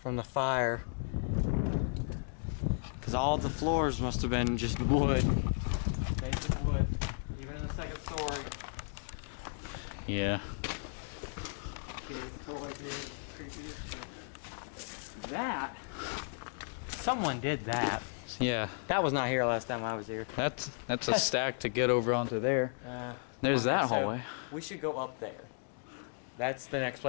from the fire. Because all the floors must have been just wood. Basic wood. Even in the second story. Yeah. That? Someone did that. Yeah. That was not here last time I was here. That's a stack to get over onto there. There's Okay, that so hallway. we should go up there. That's the next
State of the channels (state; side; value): silent; right; digital silence